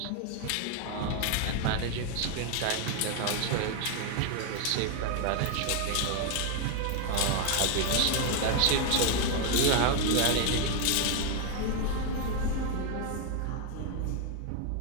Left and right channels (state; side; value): different; both; correlation 0.01